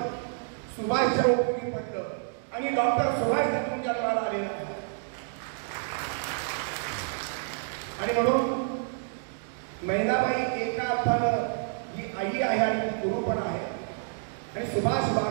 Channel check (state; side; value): silent; left; digital silence